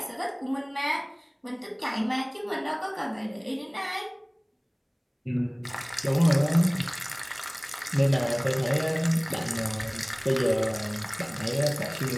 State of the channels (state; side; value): identical; both; correlation 1.00